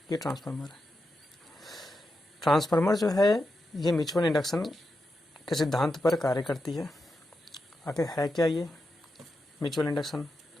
ये ट्रांसफार्मर है। ट्रांसफार्मर जो है ये म्यूचुअल इंडक्शन के सिद्धांत पर कार्य करती है। आखिर है क्या ये म्यूचुअल इंडक्शन?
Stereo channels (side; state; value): both; normal; correlation 0.88